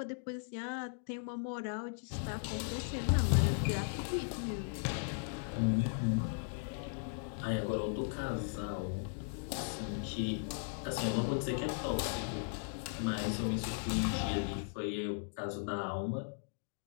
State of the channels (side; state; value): right; silent; digital silence